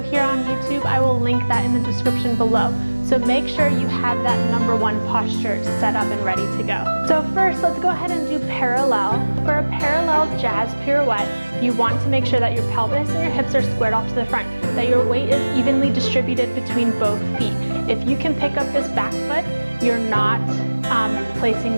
on YouTube. I will link that in the description below. So make sure you have that #1 posture set up and ready to go. So first, let's go ahead and do parallel. For a parallel jazz pirouette, you want to make sure that your pelvis and your hips are squared off to the front, that your weight is evenly distributed between both feet. If you can pick up this back foot, you're not placing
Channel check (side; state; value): both; inverted; correlation -1.00